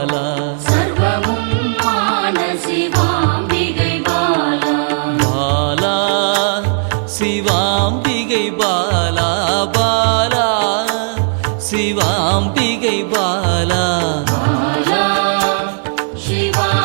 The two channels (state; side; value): silent; left; 69 dB below the other